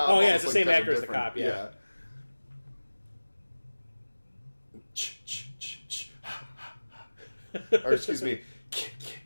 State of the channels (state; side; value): inverted; both; correlation -1.00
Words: Oh, yeah, it's almost the same looked actor as the different. cop, yeah. Or excuse me.